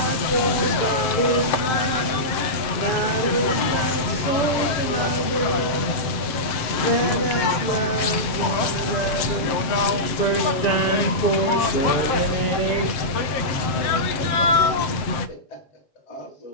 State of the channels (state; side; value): late; right; 7.6 ms